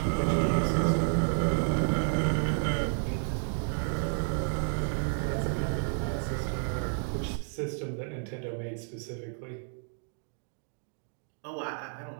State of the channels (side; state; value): left; silent; 57 dB below the other